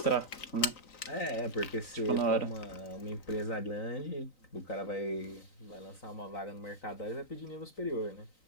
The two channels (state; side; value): late; right; 3.9 ms